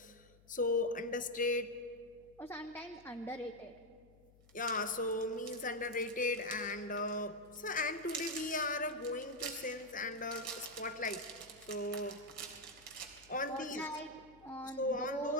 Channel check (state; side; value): noise; left; hum, 26 dB below the sound